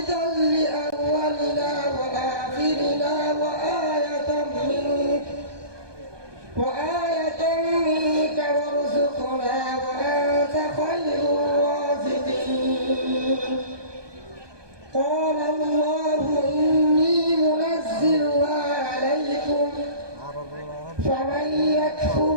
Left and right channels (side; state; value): left; late; 1.2 ms